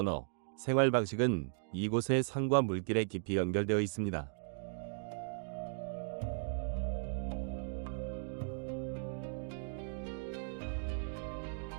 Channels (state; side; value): silent; left; digital silence